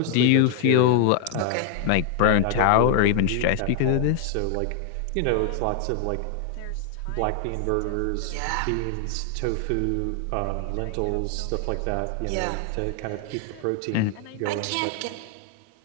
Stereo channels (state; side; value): different; both; correlation 0.00